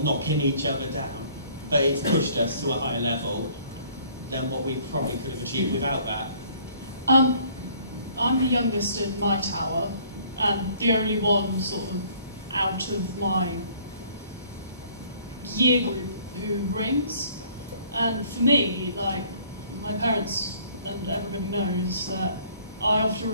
each other down, but it's pushed us to a higher level than what we probably could have achieved without that. I'm the youngest in my tower, and the only one sort of out of my year group who rings. And for me, like, my parents and everybody knows that I often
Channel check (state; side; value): inverted; both; correlation -0.57